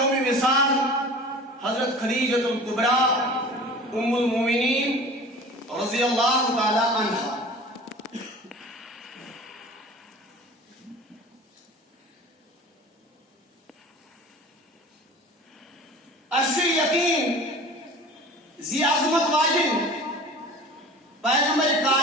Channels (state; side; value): normal; both; correlation 0.40